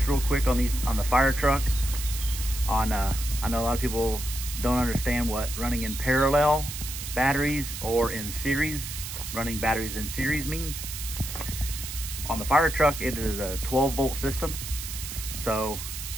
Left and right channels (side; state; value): right; noise; hiss, 8 dB below the sound